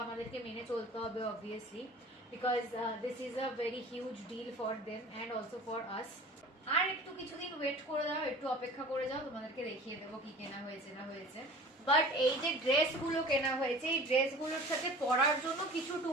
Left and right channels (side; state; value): both; normal; correlation 0.42